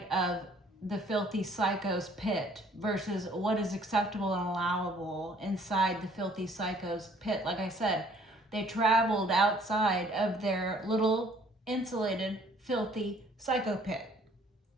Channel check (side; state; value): both; normal; correlation 0.59